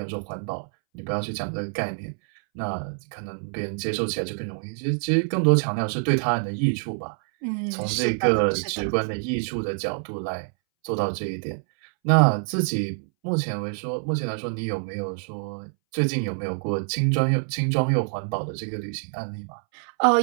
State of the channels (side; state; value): left; silent; 61 dB below the other